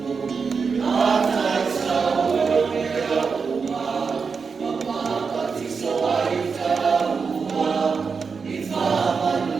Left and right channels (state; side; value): quieter; left; 5.3 dB